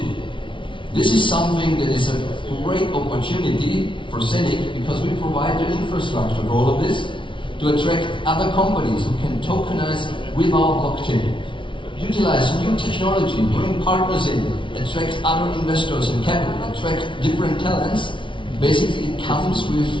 This is something that is a great opportunity for Zeniq because we provide the infrastructure for all of this to attract other companies who can tokenize with our blockchain. Utilize new technology, bring partners in, attract other investors and capital, attract different talents. Basically, it comes with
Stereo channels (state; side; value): late; right; 0.24 ms